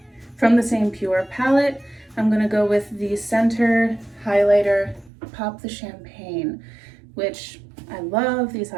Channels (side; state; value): left; drops out; at 5.1 s